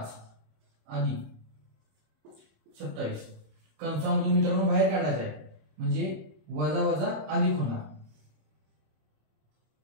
अधिक 27 कंसामधून मित्रांनो बाहेर काढायचं आहे. म्हणजे वजा वजा अधिक होणार.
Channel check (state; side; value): late; left; 26 ms